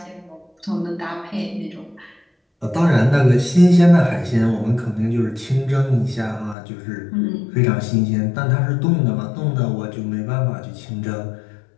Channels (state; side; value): drops out; right; at 6.6 s